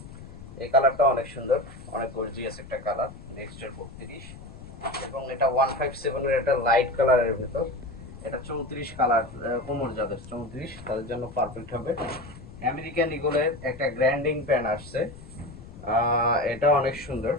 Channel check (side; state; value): left; noise; rumble, 16 dB below the sound